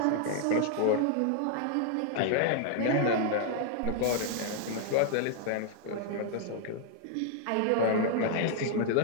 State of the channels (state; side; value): different; both; correlation 0.00